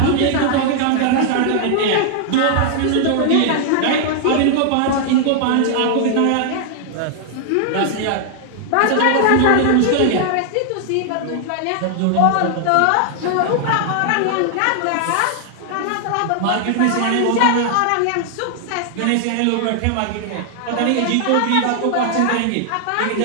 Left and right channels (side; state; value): both; different; correlation 0.00